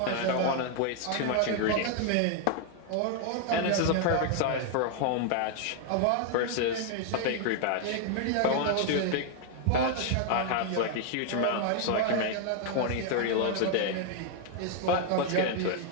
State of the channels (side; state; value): both; different; correlation 0.00